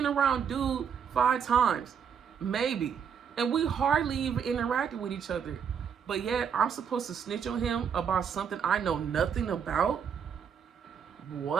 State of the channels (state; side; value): quieter; left; 7.3 dB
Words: around dude 5 times, maybe, and we hardly even interacted with each other. But yet, I'm supposed to snitch on him about something I know nothing about?